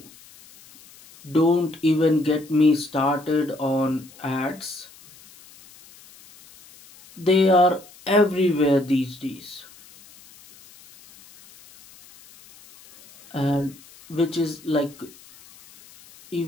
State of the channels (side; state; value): left; noise; hiss, 24 dB below the sound